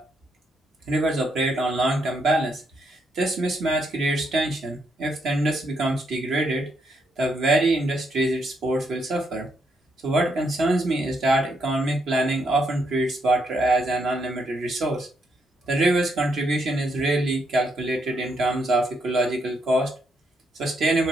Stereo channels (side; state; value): both; normal; correlation 0.76